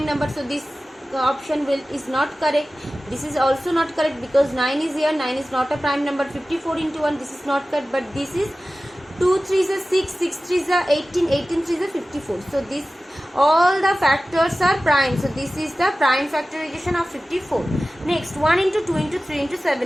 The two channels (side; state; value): both; normal; correlation 0.96